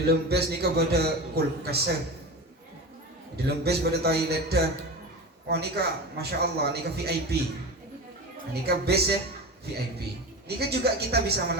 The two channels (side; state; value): both; normal; correlation 0.28